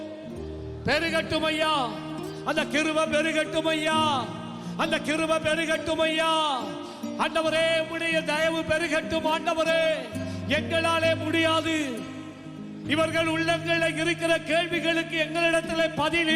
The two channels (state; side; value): identical; both; correlation 1.00